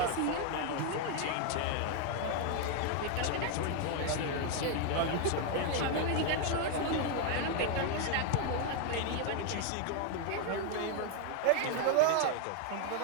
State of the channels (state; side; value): different; both; correlation 0.01